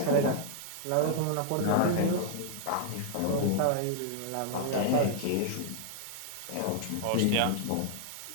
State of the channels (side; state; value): both; different; correlation 0.00